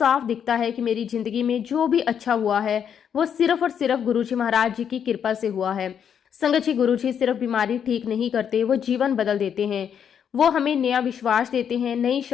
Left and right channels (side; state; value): right; quieter; 8.2 dB